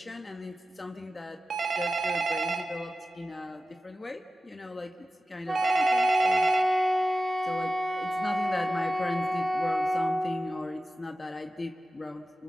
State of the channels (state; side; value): normal; both; correlation 0.94